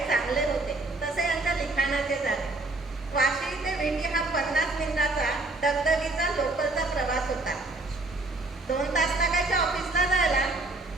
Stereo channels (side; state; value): left; quieter; 3.0 dB